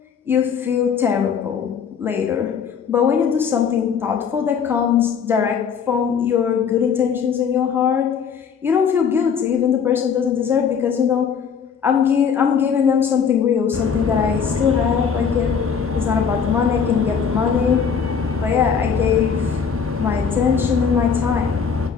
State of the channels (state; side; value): quieter; right; 6.7 dB